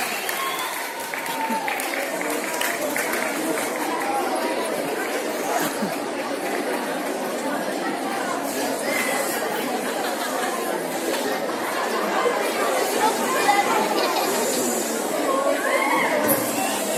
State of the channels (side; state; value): both; identical; correlation 1.00